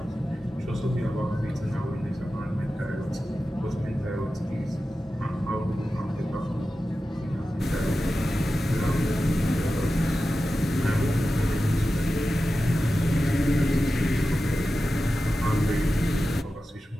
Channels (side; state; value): both; normal; correlation 0.93